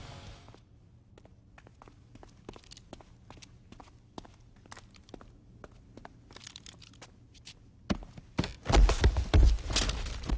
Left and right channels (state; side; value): identical; both; correlation 1.00